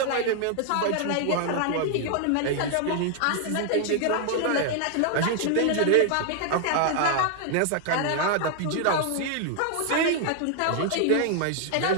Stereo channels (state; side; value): different; both; correlation 0.00